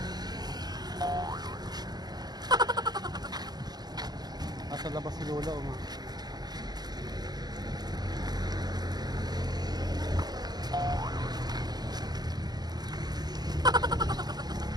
Sa labas si Lola o ma.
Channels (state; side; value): late; left; 0.20 ms